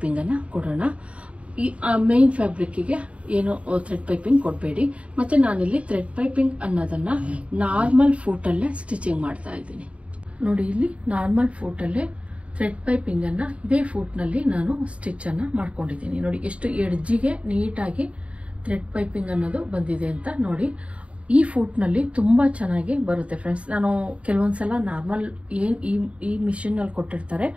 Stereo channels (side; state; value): left; late; 0.063 ms